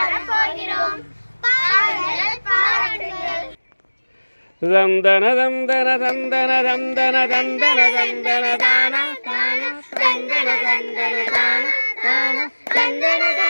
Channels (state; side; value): inverted; both; correlation -1.00